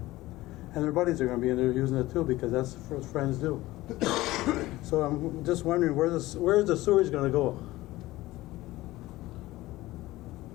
And their buddies are going to be in there using it too, because that's what friends do. So I'm just wondering, where's the sewage going to go?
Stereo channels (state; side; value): quieter; right; 17.8 dB